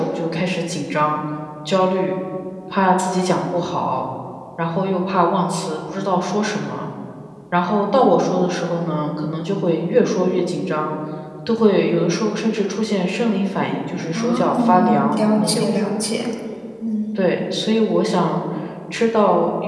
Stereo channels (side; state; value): both; identical; correlation 1.00